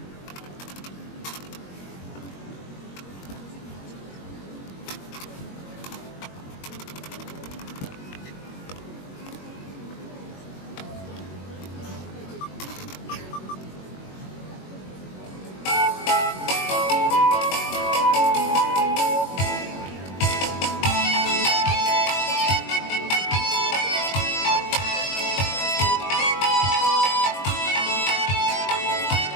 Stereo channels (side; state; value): right; late; 21 ms